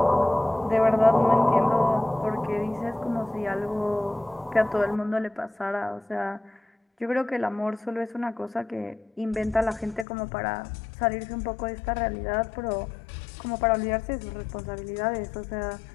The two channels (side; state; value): right; drops out; at 10.1 s